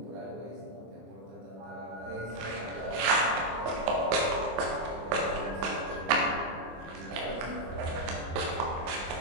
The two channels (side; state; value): left; late; 25 ms